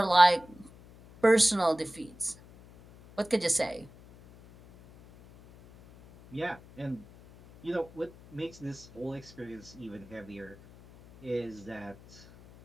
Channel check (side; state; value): left; noise; hum, 22 dB below the sound